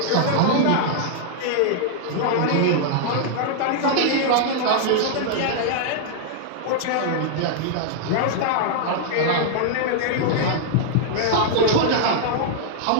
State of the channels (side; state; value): both; different; correlation -0.01